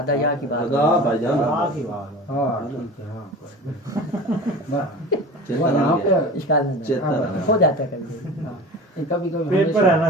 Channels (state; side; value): normal; both; correlation 0.36